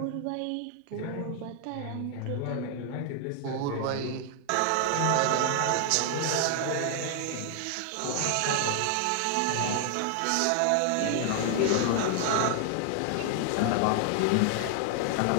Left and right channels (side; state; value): both; different; correlation 0.00